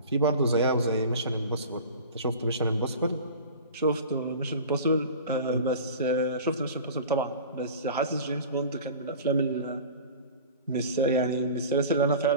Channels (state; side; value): inverted; both; correlation -0.38